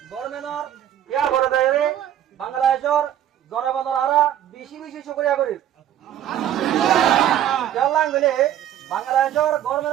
গভর্নমেন্টর ইয়া করে দেয় বাংলাদেশের জনগণের আরা বেশি বেশি শুকরিয়া করি জানলাম গেলে বাংলাদেশের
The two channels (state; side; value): quieter; left; 11.0 dB